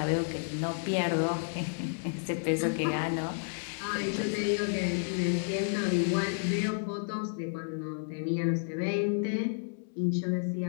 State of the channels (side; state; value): right; silent; digital silence